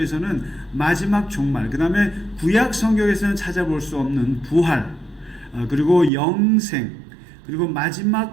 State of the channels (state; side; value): drops out; left; at 6.1 s